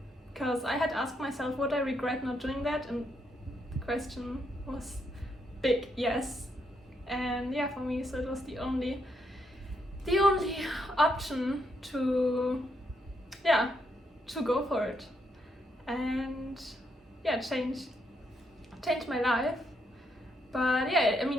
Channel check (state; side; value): normal; both; correlation 0.77